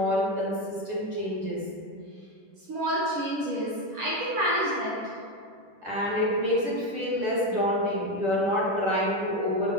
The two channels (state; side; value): late; left; 10 ms